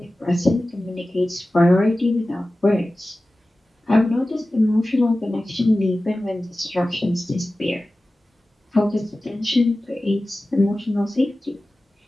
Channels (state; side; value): normal; both; correlation 0.96